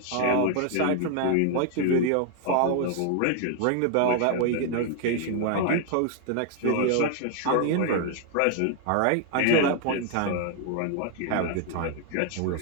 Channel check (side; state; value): both; different; correlation 0.00